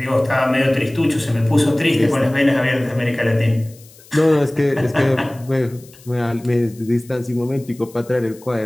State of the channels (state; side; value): noise; left; hiss, 24 dB below the sound